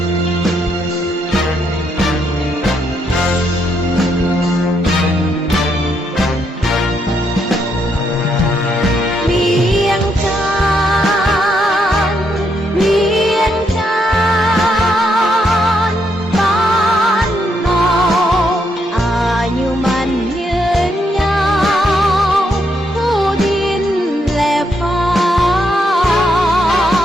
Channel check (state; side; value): normal; both; correlation 0.77